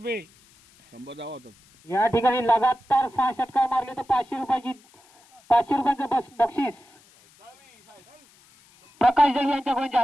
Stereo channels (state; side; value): noise; left; hiss, 29 dB below the sound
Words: 100 धावा होतात. या ठिकाणी लगातार 6 षटकार मारले तर 500 रुपयाचं बक्षीस प्रकाश जळी यांच्याकडून